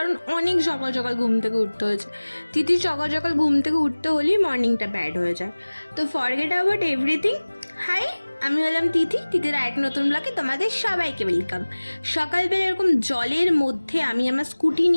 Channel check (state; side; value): inverted; both; correlation -1.00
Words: অনেক সকাল সকাল ঘুম থেকে উঠতে হয়েছে। তিথির সকাল সকাল ঘুম থেকে উঠতে হলেই মর্নিংটা ব্যাড হয়ে যায়। তো ফরগেট অ্যাবাউট এভরিথিং। হাই, আমি হলাম তিথি। তিথির এক নতুন ব্লগে তোমাদের সবাইকে ওয়েলকাম। সকালবেলা এরকম জলের মধ্যে আমি আমার স্কুটি